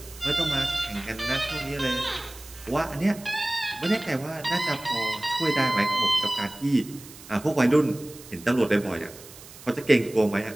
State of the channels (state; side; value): noise; right; hiss, 18 dB below the sound